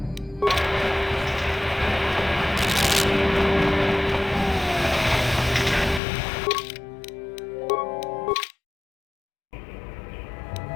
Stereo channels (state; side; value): drops out; right; at 6.0 s